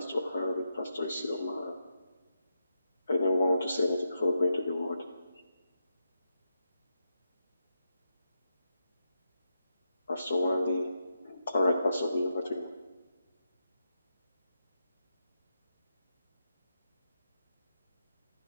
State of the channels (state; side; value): inverted; both; correlation -0.85